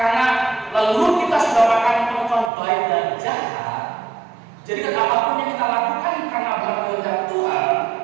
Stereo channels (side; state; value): left; drops out; at 2.5 s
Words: lalu kita sudah makan pohon baik dan jahat, jadi kan apapun yang kita lakukan karena berkehendak Tuhan,